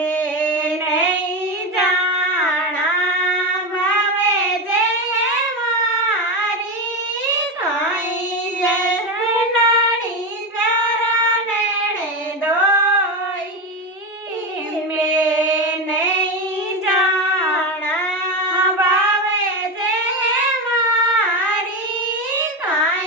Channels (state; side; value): normal; both; correlation 0.16